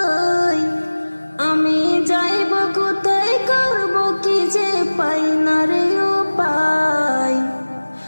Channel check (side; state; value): both; inverted; correlation -1.00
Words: আমি যাইব কোথায়, করব কি যে পাই না রে উপায়।